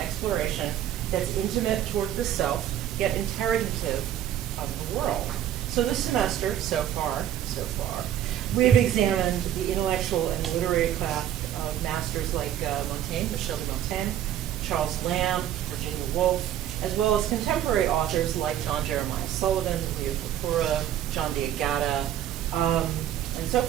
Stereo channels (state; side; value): quieter; left; 11.2 dB